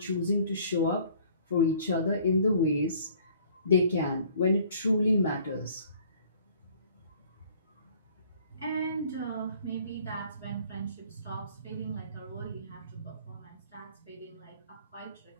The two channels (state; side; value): inverted; both; correlation -0.56